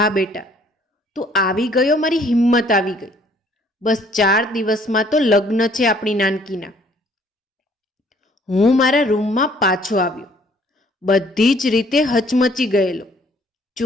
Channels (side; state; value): both; normal; correlation 0.60